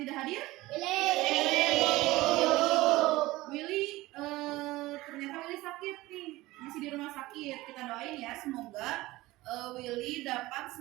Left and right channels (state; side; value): quieter; left; 18.8 dB